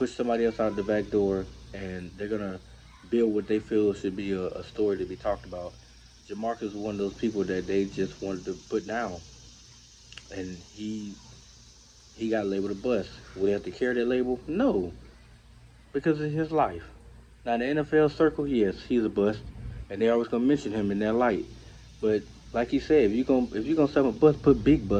somebody else out the back door, and they're gonna build what they feel should be a story to be talked about. Jamarcus is one of those people that they just wanted to put down, and he got labeled a bust. Would he have to carry that label? No, because it's his life. Now in the NFL circle, yes, he's a bust, and they always gonna mention him in that light. But like he said, if you gonna sell a bust, put big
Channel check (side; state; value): both; identical; correlation 1.00